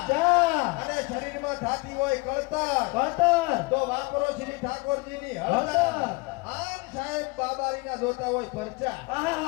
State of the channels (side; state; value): right; quieter; 26.7 dB